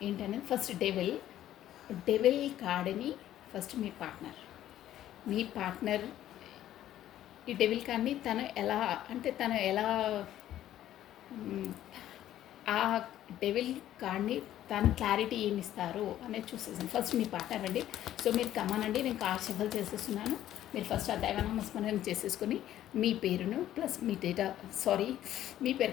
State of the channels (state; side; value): quieter; right; 12.5 dB